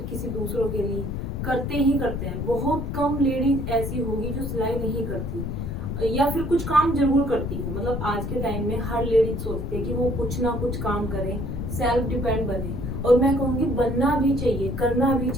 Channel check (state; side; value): noise; left; rumble, 4 dB below the sound